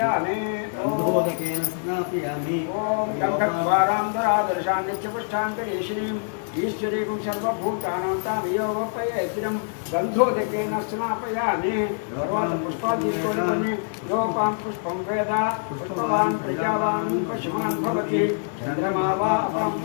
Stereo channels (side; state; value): right; silent; 58 dB below the other